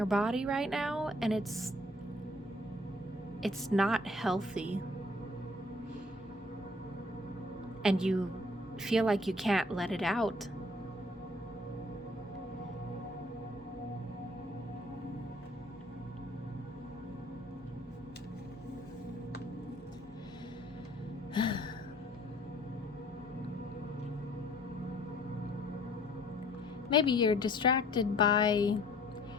body right now, and it's not healthy. And you feel like you can't let it out. Maybe you're distracted by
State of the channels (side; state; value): both; normal; correlation 0.56